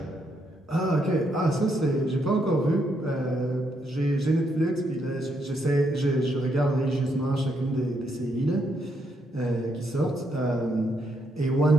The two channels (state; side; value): normal; both; correlation 0.76